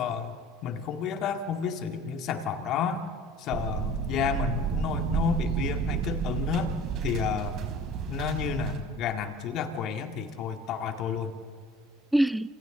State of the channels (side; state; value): both; normal; correlation 0.45